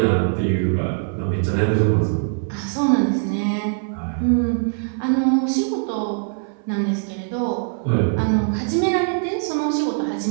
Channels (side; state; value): left; silent; 64 dB below the other